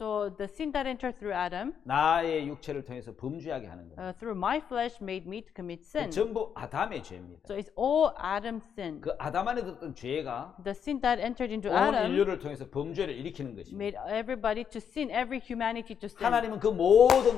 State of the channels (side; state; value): right; quieter; 7.8 dB